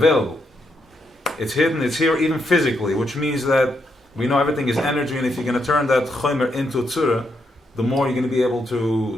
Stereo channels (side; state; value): both; normal; correlation 0.79